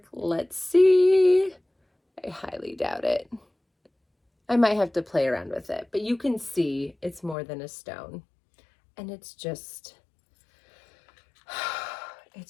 Let's see. I highly doubt it. I might have to play around with it, but you can see it's more than a stone. And it's just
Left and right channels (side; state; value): right; drops out; at 7.4 s